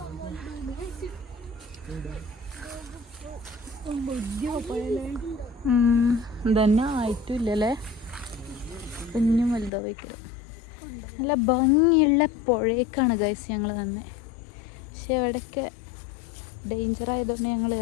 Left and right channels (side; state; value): right; drops out; at 9.7 s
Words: ഇതന്നെ ആയിട്ടില്ലല്ലേ. കുഞ്ഞും വലുതാ വയ്ക്കുക. നല്ല ഭംഗിയുള്ള പുഴയേക്കാണ് ഗൈസ് ഞങ്ങൾ തന്നെ. പക്ഷെ അവിടെയൊക്കെ ഡേഞ്ചർ ആയതുകൊണ്ട് ഞങ്ങൾ